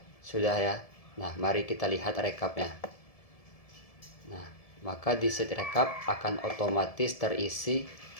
Sudah ya. Nah, mari kita lihat rekapnya. Nah, maka di sheet rekap akan otomatis terisi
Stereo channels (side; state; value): right; late; 1.7 ms